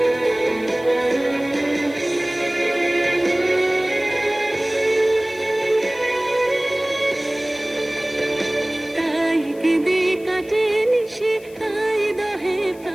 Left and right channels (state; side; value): noise; left; hiss, 24 dB below the sound